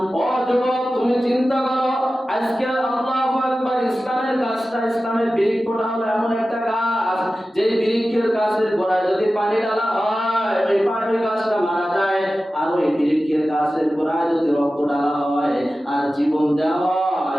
ও যুবক, তুমি চিন্তা করো, আজকে আল্লাহু আকবার, ইসলামের গাছটা, ইসলামের বৃক্ষটা হলো এমন একটা গাছ, যে বৃক্ষের গাছের গোড়ায় যদি পানি ঢালা হয়, ওই পানি গাছটা মারা যায়, আর ওই বৃক্ষের গাছের গোড়ায় যদি রক্ত ঢালা হয় আর জীবন দেওয়া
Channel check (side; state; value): both; normal; correlation 0.95